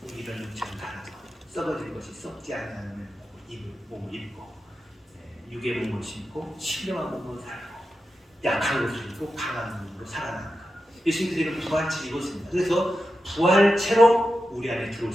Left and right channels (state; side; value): normal; both; correlation 0.90